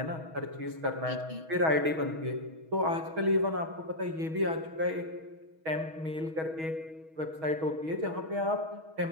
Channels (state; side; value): late; left; 6.3 ms